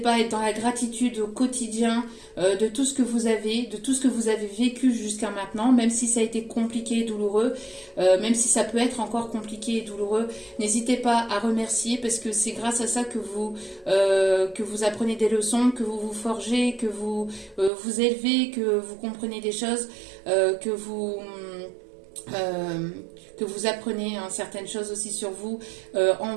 à être dans la gratitude au quotidien de tout ce que vous avez, de tout ce que vous avez vécu jusqu'à maintenant, même si ça a été compliqué et douloureux, même si ça peut être encore compliqué et douloureux, n'hésitez pas à remercier parce que c'est grâce à ça que vous apprenez des leçons, que vous vous forgez, que vous vous élevez, que vous comprenez des choses, que vous apprenez certaines choses aussi sur vous, en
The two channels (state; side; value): drops out; left; at 17.7 s